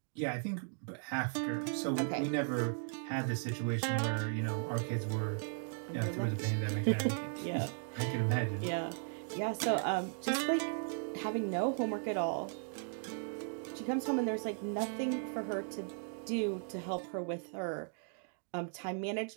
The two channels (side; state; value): left; silent; 53 dB below the other